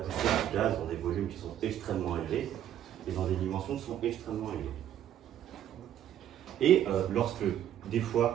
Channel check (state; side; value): quieter; left; 10.9 dB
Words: du gaz dans des volumes qui sont extrêmement élevés et dans des dimensions qui sont extrêmement élevées. Et lorsque, des